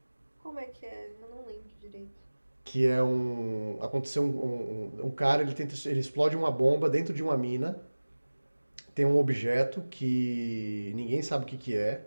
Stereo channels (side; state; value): both; inverted; correlation -1.00